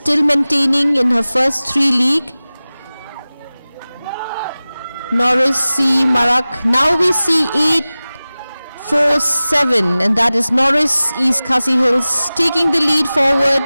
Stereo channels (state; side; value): inverted; both; correlation -0.97